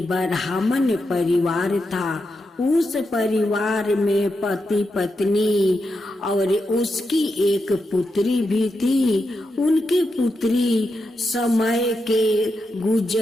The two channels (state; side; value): normal; both; correlation 0.86